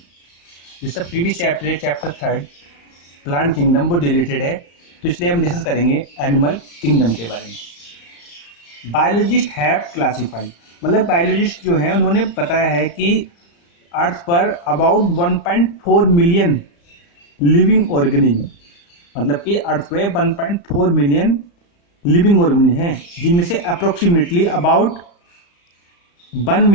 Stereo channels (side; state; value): right; late; 35 ms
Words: जिसका previous chapter है chapter 3 plant kingdom वो deleted है, तो इसलिए हम डिस्कस करेंगे एनिमल किंगडम के बारे में। बायोलॉजिस्ट हैव क्लासिफाई, मतलब बायोलॉजिस्ट जो हैं उन्होंने बताया है कि अर्थ पर अबाउट 1.4 मिलियन लिविंग ऑर्गेनिज्म, मतलब कि अर्थ पे 1.4 मिलियन लिविंग ऑर्गेनिज्म हैं, जिनमें से approximately about 1